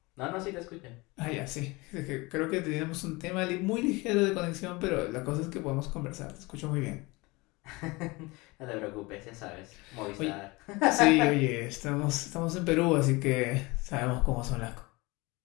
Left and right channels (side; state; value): right; quieter; 24.1 dB